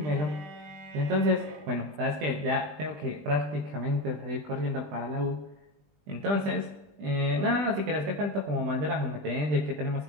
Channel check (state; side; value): late; left; 20 ms